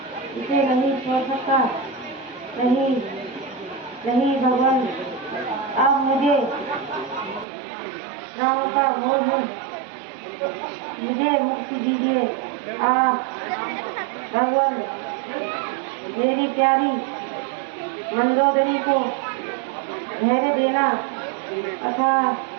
इसे नहीं छोड़ सकता। नहीं भगवान, आप मुझे राम का मोह मुझे मुक्ति दीजिए। भगवान, मेरी प्यारी मंदोदरी को धैर्य देना तथा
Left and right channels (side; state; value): left; drops out; at 7.5 s